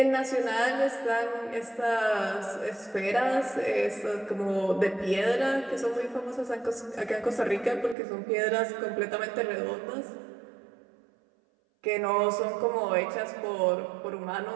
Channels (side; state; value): left; drops out; at 8.0 s